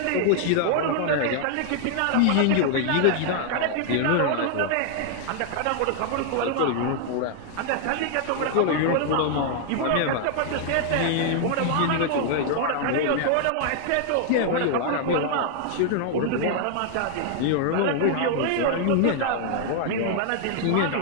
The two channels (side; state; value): both; different; correlation 0.00